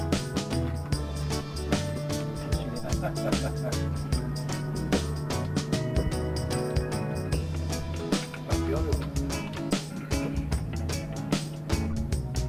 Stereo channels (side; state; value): both; identical; correlation 1.00